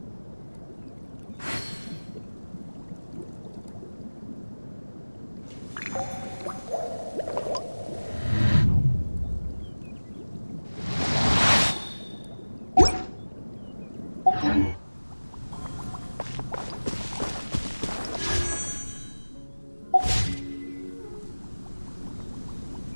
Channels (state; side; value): inverted; both; correlation -1.00